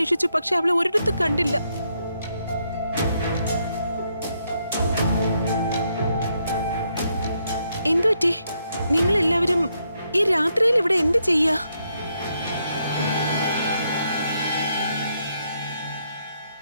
പക്ഷെ അവളെ ഒരിടത്ത് കണ്ടില്ല. എന്തുപറ്റി? നിങ്ങൾ എല്ലാവരും ഈ രാത്രിയിൽ ഇവിടെ എന്ത് ചെയ്യാ?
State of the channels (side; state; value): both; inverted; correlation -0.77